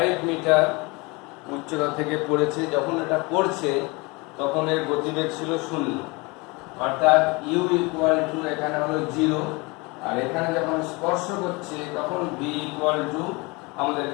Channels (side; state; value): right; quieter; 26.3 dB